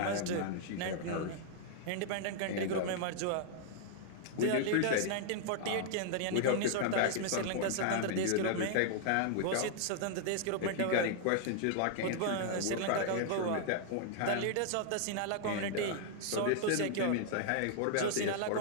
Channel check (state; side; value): different; both; correlation -0.01